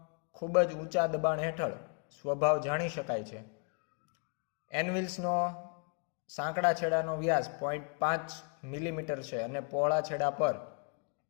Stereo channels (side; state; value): right; quieter; 37.9 dB